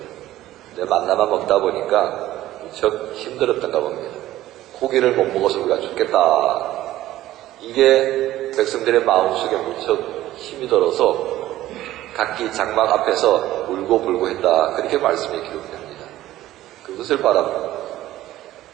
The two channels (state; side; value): quieter; left; 14.7 dB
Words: 근데 만나만 먹다 보니까 무척 힘들었던가 봅니다. 고기를 못 먹어서 우리가 죽겠다. 이게 백성들의 마음속에 무척 힘이 들어서 각기 장막 앞에서 울고불고 했다. 그렇게 말씀이 기록됩니다. 그것을